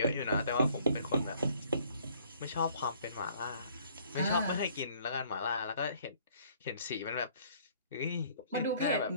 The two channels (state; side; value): inverted; both; correlation -0.60